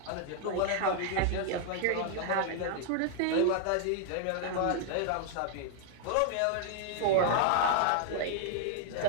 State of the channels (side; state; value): both; different; correlation 0.00